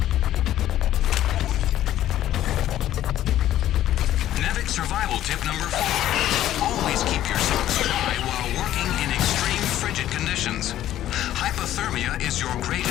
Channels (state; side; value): quieter; right; 12.7 dB